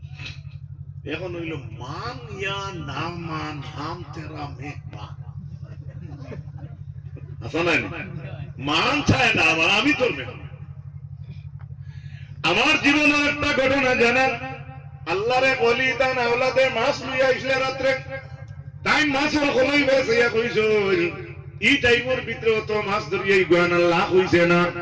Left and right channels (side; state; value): both; identical; correlation 1.00